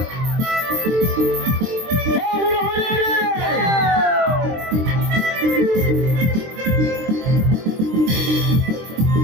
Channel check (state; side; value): late; left; 23 ms